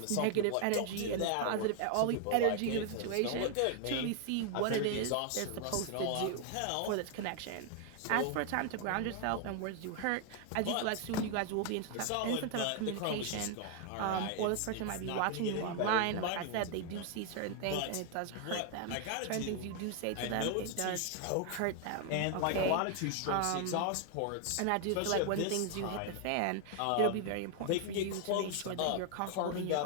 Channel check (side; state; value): both; different; correlation 0.00